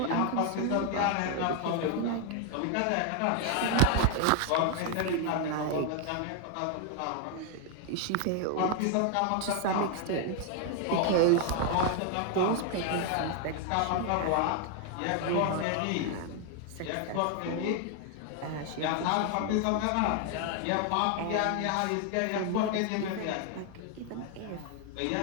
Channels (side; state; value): both; different; correlation 0.00